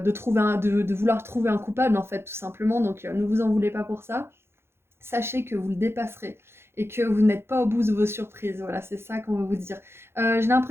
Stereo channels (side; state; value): left; late; 0.12 ms